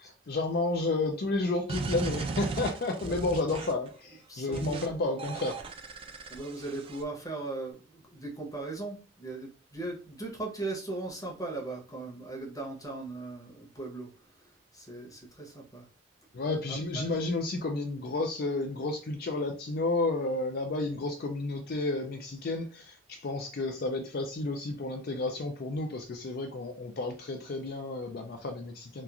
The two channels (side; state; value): both; normal; correlation 0.29